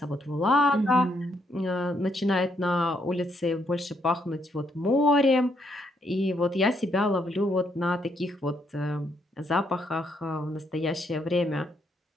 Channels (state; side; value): normal; both; correlation 0.74